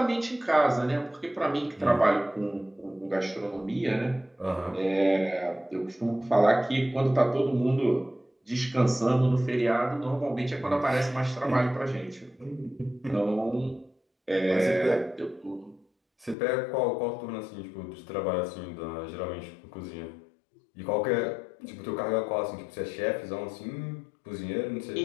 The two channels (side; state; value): right; drops out; at 16.4 s